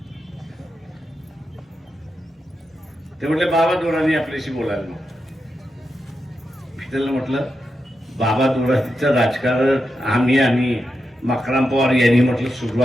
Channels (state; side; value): normal; both; correlation 0.87